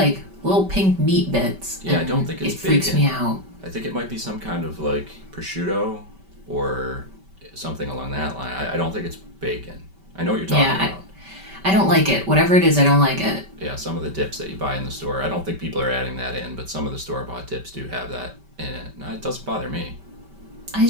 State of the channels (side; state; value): left; late; 5.2 ms